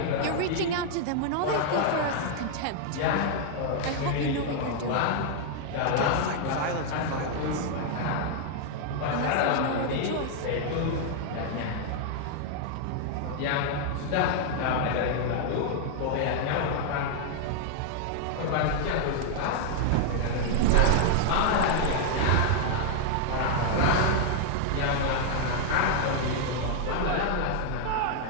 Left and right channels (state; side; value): different; both; correlation 0.00